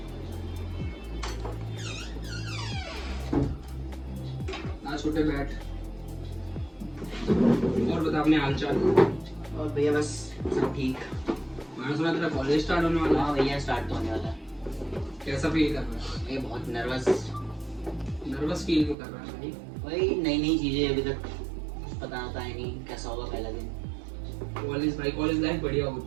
ना छोटे बैठ। और बता अपने हाल चाल। और भैया बस सब ठीक। मैंने सुना तेरा कॉलेज स्टार्ट होने वाला है। हाँ भैया स्टार्ट तो होने वाला है। कैसा फील कर रहा है? मैं बहुत नर्वस फील क्यों कर रहा है भाई? वही नई नई चीजें, अभी तक कुछ पता आता है नहीं कैसा होगा पहला दिन। कॉलेज लाइफ बढ़िया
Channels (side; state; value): left; drops out; at 18.9 s